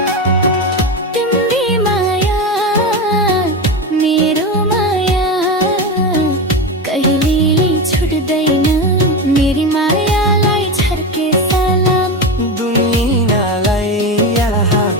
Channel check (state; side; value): normal; both; correlation 0.19